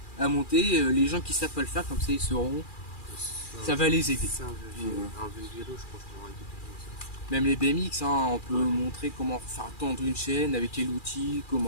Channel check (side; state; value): right; late; 2.4 ms